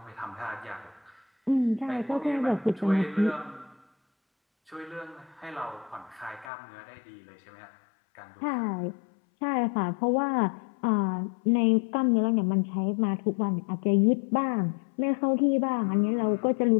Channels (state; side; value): drops out; right; at 6.5 s